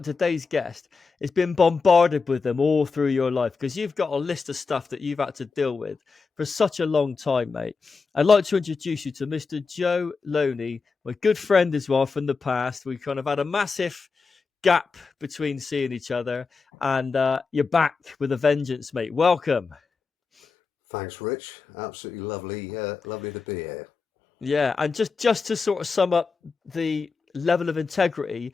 today's guest has been bombarded with them all through your life because you've got a list of stuff that you've had to deal with for such a long time, mate. I'd like to introduce you to Mr. Joe Loney, my good friend as well from the past. We kind of had a massive gap between seeing each other, and you're back with a vengeance, mate. Welcome. Thanks, Rich. Absolutely lovely, lovely to be here. Yeah, and just to sort of sum up the level of integrity,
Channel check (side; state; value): right; quieter; 4.7 dB